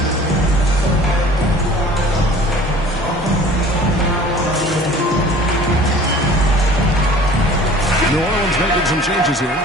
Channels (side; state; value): both; normal; correlation 0.47